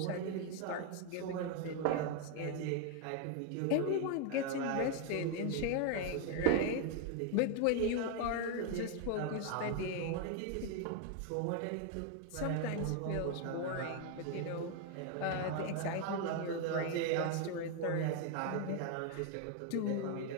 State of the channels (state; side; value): different; both; correlation 0.01